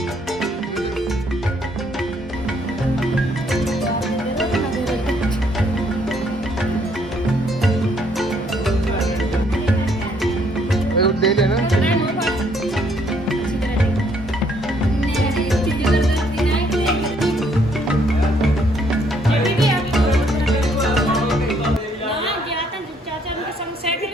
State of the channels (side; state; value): both; normal; correlation 0.67